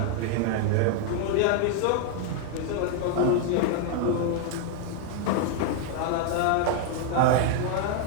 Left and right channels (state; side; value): different; both; correlation 0.00